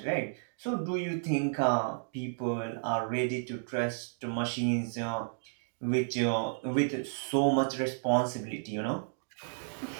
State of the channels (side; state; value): left; silent; digital silence